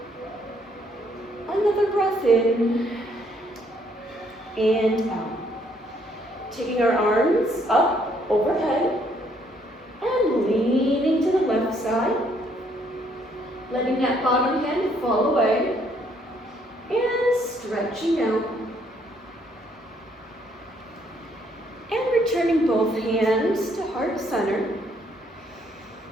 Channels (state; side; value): normal; both; correlation 0.68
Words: Another breath in and out. Taking our arms up overhead and leaning to the left side. Letting that bottom hand fall away and stretching out. And returning both hands to heart center.